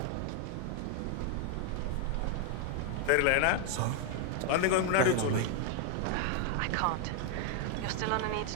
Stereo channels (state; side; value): different; both; correlation 0.00